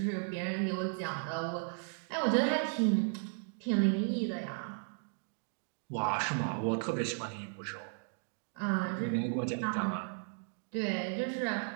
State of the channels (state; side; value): silent; left; 54 dB below the other